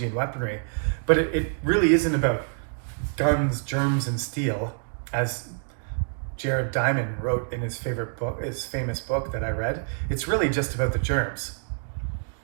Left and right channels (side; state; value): left; silent; digital silence